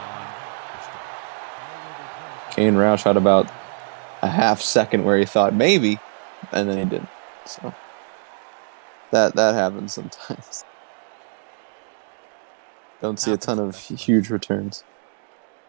this drive. Kane Roush had about a half second where he thought maybe, and then he didn't. So that happens sometimes. Don't see Happens a to ton the best of of huge returns.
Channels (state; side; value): silent; left; digital silence